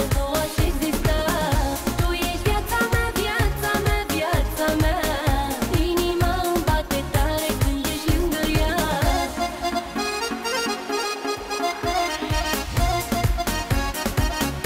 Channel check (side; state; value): both; identical; correlation 1.00